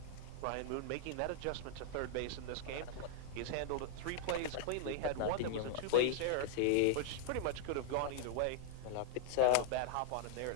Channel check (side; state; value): both; different; correlation -0.01